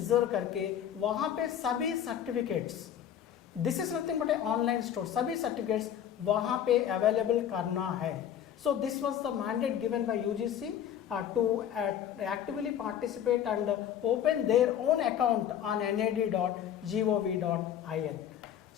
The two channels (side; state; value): right; quieter; 9.7 dB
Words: करके वहाँ पे सभी certificates, this is nothing but A online store, सभी सर्टिफिकेट्स वहाँ पे अवेलेबल करना है. So this was the mandate given by UGC to actively participate and open their own account on nad.gov.in.